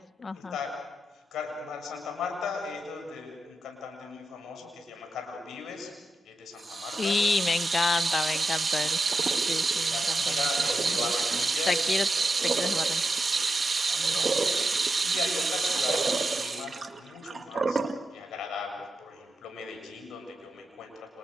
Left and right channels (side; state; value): both; normal; correlation 0.87